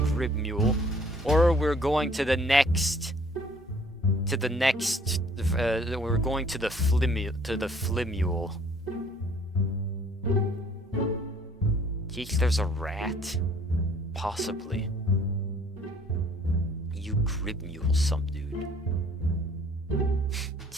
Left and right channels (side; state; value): both; normal; correlation 0.57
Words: Grib Mule, or we're going to the next... we're going to the Flimule. Think there's a rat? Possibly. You Grib Mule some dude.